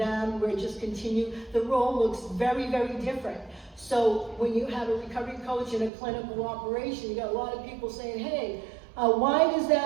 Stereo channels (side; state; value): left; drops out; at 5.9 s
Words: We're just continue. The role looks very different. So when you have a recovery coach in a clinical operation, you got a lot of people saying, "Hey, why is